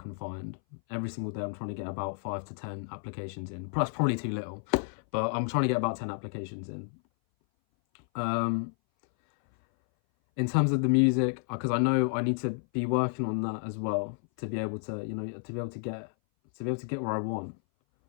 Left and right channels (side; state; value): right; silent; 57 dB below the other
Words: find. Every single day, I'm trying to get about 5 to 10 applications in. That's probably too little, but I'm trying to get about 10 applications in. In terms of the music, because I know I need to be working on that as well to be able to, you know, to be able to get where I want.